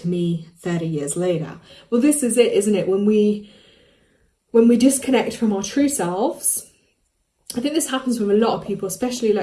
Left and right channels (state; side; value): identical; both; correlation 1.00